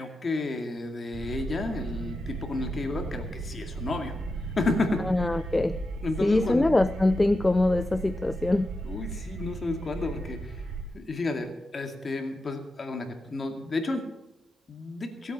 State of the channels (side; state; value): both; normal; correlation 0.89